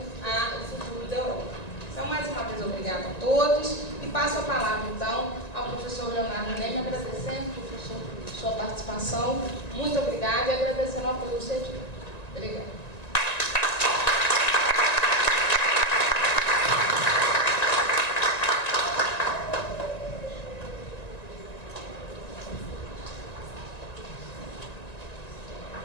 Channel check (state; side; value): late; right; 1.9 ms